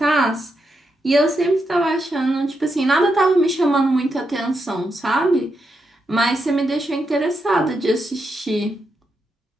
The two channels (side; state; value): both; normal; correlation 0.84